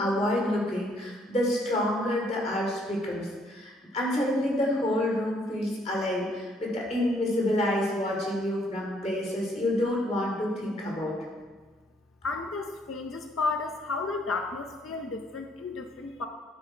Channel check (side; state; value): both; normal; correlation 0.67